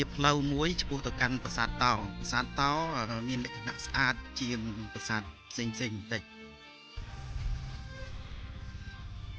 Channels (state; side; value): identical; both; correlation 1.00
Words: ាផ្លូវមួយឆ្ពោះទៅកាន់ប្រាសាទតោប្រាសាទតោមានលក្ខណៈស្អាតជាងប្រាសាទផ្សេងៗបន្តិច